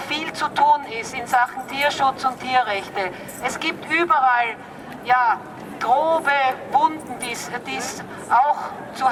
zu tun ist in Sachen Tierschutz und Tierrechte. Es gibt überall, ja, grobe Wunden, die es auch zu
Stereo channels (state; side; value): identical; both; correlation 1.00